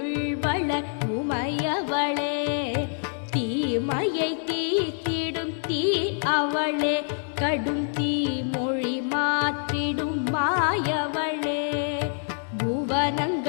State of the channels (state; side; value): silent; right; digital silence